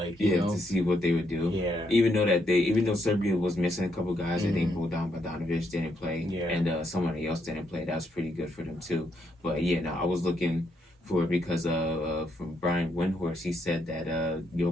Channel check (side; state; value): both; normal; correlation 0.76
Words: to see what they would do. Yeah. Even though Serbia was missing a couple guys, I think Bojan Bogdanovic didn't play. Yeah. And somebody else didn't play. That was pretty good for them, too. But, yeah, no, I was looking for it because from Brian Windhorst, he said that